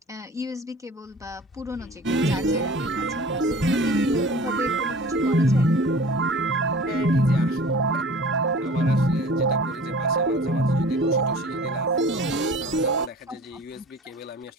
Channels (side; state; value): both; normal; correlation 0.43